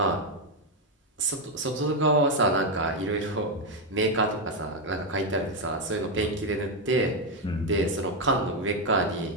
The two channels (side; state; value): both; normal; correlation 0.05